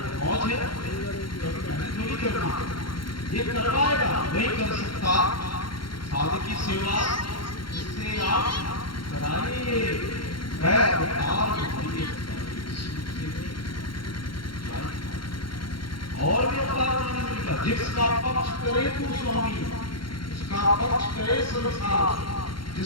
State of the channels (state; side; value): late; right; 0.73 ms